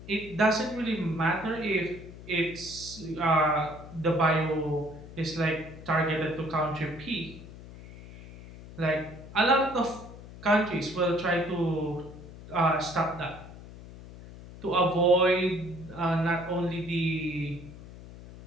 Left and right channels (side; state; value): left; noise; hum, 16 dB below the sound